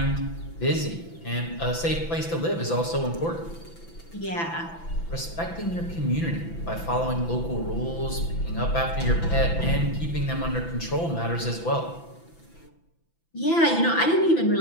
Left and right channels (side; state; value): right; late; 6.0 ms